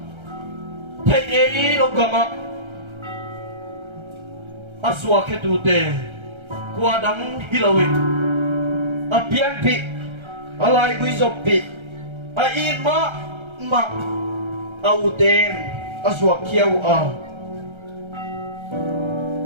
thei eri lo gama aswa ke tu te kwa dang hilawin apian pi alai gui zopi a in ma auten aswa kiau a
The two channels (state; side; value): late; left; 1.3 ms